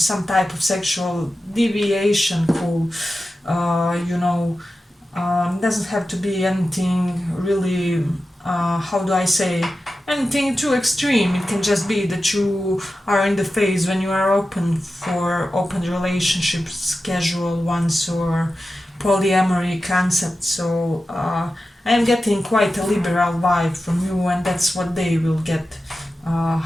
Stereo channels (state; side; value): normal; both; correlation 0.92